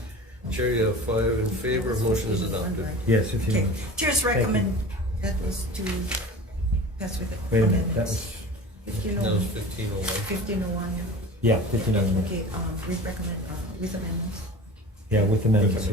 Chair, you have 5 in favor. Motion is adopted. Yes, if you Okay, want. Chair's recommend, that was to pass with the Wait a minute, that amendments. was, That was 1501. 1501, yeah, 1501. Okay, we recommend with amendments. Yeah, with amendments,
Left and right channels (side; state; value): both; normal; correlation 0.37